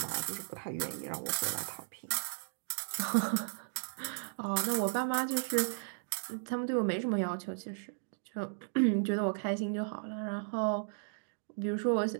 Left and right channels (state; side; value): silent; left; digital silence